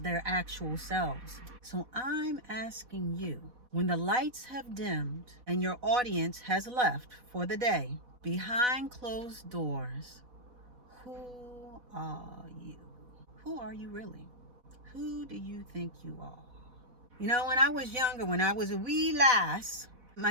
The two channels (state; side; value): late; left; 4.1 ms